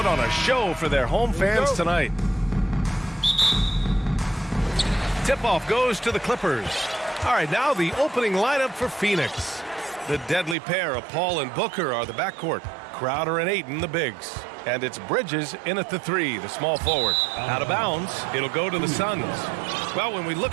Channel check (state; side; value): drops out; left; at 10.6 s